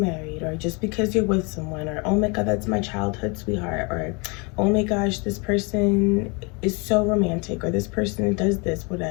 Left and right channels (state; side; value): quieter; right; 30.7 dB